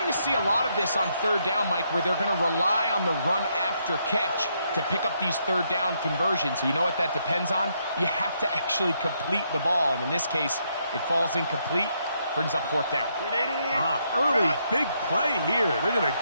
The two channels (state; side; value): inverted; both; correlation -0.76